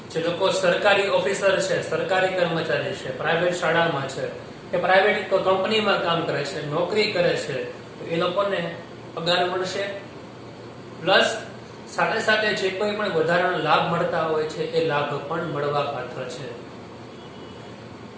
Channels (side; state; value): both; identical; correlation 1.00